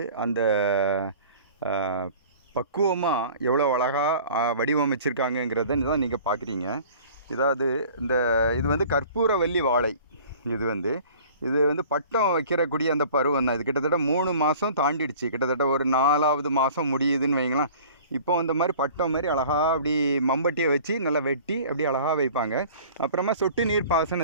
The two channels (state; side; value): inverted; both; correlation -0.46